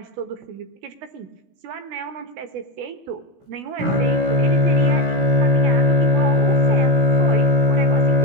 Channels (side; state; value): left; late; 16 ms